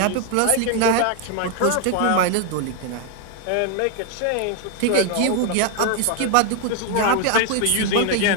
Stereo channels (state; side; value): different; both; correlation 0.01